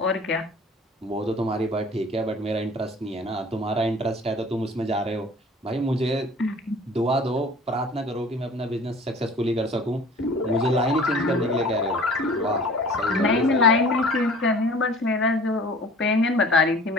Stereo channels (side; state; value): both; normal; correlation 0.46